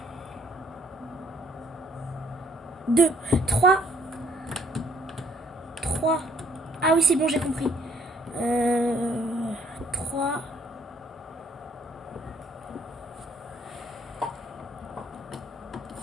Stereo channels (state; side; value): normal; both; correlation 0.65